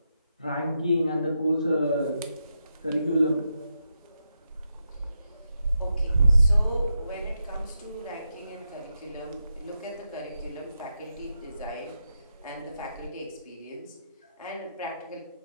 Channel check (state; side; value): inverted; both; correlation -0.86